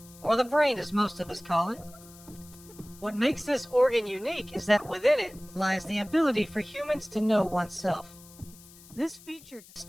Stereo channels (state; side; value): noise; left; hiss, 22 dB below the sound